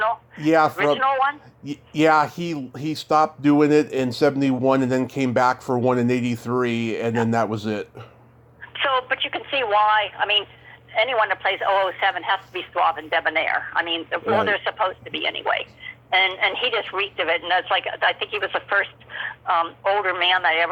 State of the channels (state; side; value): identical; both; correlation 1.00